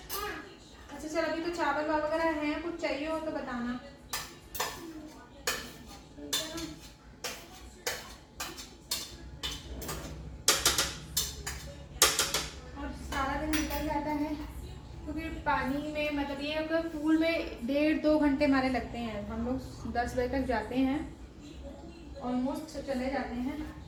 अच्छा चल, अभी तो चावल वगैरह हैं, कुछ चाहिए हो तो बताना। और सारा दिन निकल जाता है क्योंकि पानी में, मतलब ये अगर पूल में 1.5-2 घंटे हमारे लगते हैं। हम लोग 10 बजे तक जाते हैं, ऑलमोस्ट चले जाते हैं,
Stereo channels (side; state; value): both; identical; correlation 1.00